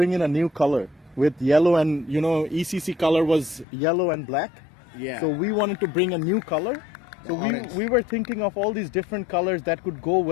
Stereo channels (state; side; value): drops out; right; at 3.7 s